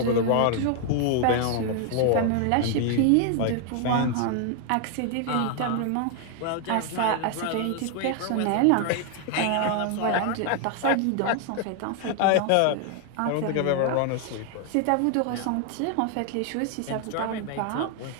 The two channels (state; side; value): different; both; correlation 0.00